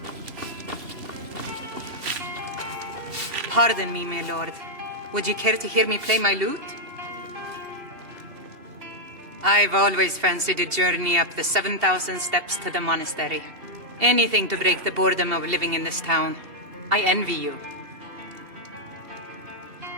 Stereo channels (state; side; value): late; left; 2.8 ms